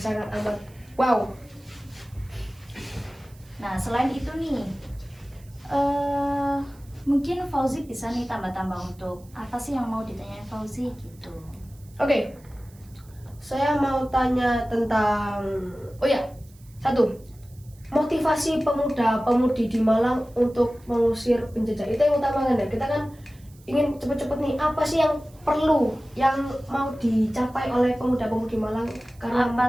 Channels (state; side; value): noise; right; hiss, 28 dB below the sound